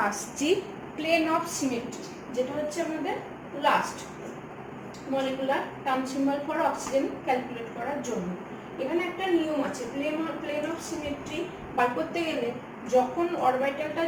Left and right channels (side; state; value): both; identical; correlation 1.00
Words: আসছি প্লেন অফ সিমেট্রি, যেটা হচ্ছে আমাদের last molecular term symbol for oxygen calculate করার জন্য। এখানে একটা নিয়ম আছে, প্লেন অফ সিমেট্রি বার করতে গেলে যখন অরবিটালটা